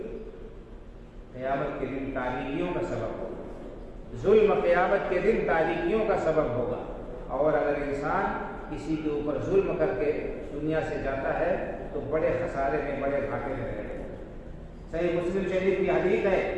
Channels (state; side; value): identical; both; correlation 1.00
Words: قیامت کے دن تاریکیوں کا سبب ہوگا. ظلم قیامت کے دن تاریکیوں کا سبب ہوگا. اور اگر انسان کسی کے اوپر ظلم کر کے دنیا سے جاتا ہے تو بڑے خسارے میں، بڑے گھاٹے میں رہے. صحیح مسلم شریف کی حدیث ہے،